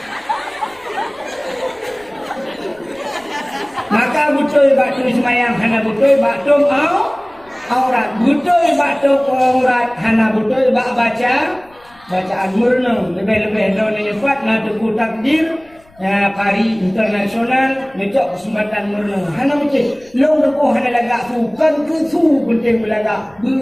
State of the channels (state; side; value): noise; left; rumble, 29 dB below the sound